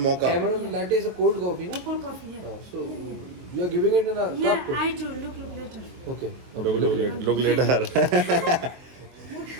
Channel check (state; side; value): late; left; 23 ms